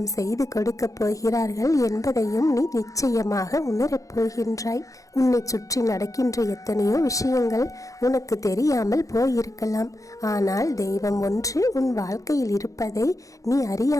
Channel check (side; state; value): right; late; 0.16 ms